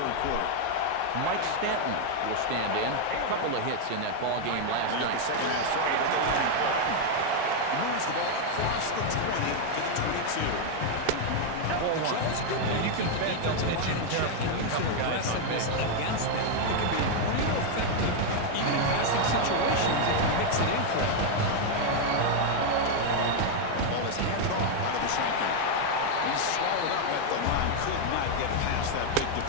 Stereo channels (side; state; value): both; different; correlation 0.01